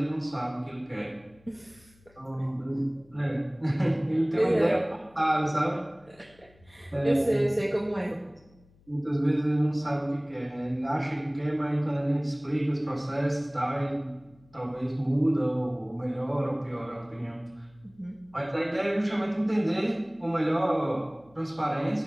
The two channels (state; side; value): noise; left; hum, 29 dB below the sound